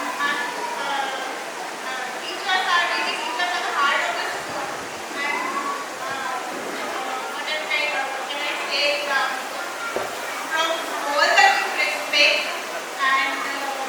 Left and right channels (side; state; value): both; identical; correlation 1.00